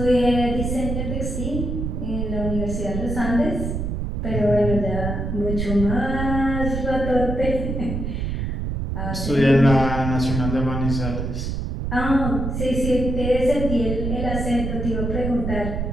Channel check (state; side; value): noise; right; rumble, 2 dB below the sound